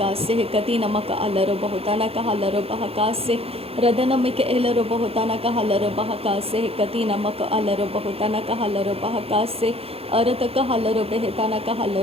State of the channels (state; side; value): late; left; 0.28 ms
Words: Kati namaka alaro bahutana kahalaro bahakase. Radanamika elaro bahutana kahalaro bahakase. Kati namaka alaro bahutana kahalaro bahakase. Arataka halaro behetana